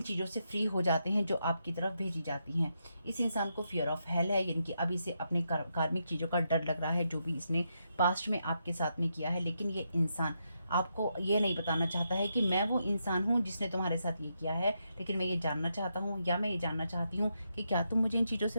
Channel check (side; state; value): both; inverted; correlation -0.82